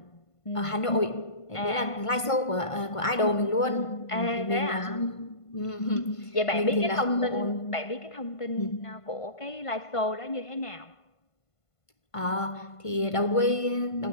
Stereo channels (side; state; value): right; late; 1.5 ms